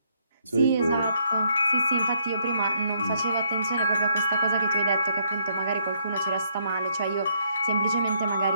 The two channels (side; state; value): both; inverted; correlation -0.71